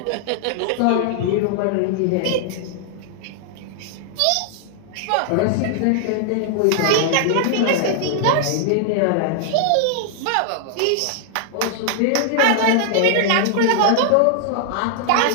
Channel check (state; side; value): different; both; correlation -0.01